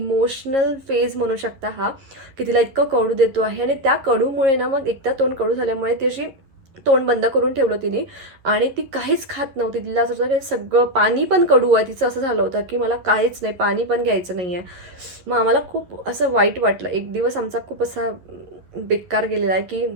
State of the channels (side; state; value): left; late; 11 ms